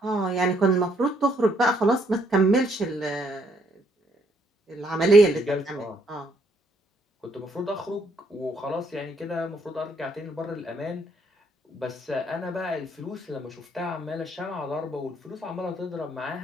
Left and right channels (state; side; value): normal; both; correlation 0.70